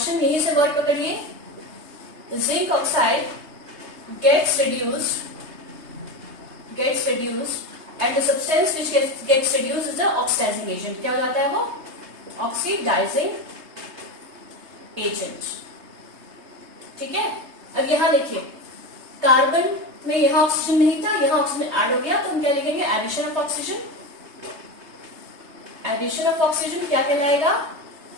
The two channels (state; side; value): late; left; 3.3 ms